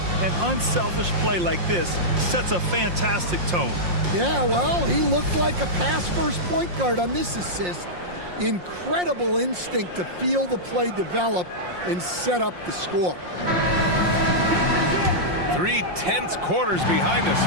an unselfish play like this sets a fantastic tone. Yeah, well, he looked like a pass-first point guard on this assist. Incredible instinct to feel the play develop and set up the score. 3 tense quarters behind us.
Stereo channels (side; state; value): left; late; 5.6 ms